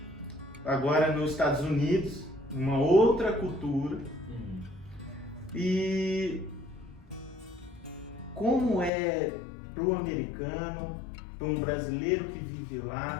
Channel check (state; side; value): drops out; right; at 8.9 s